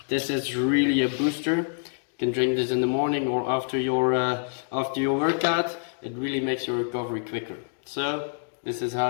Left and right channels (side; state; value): right; silent; digital silence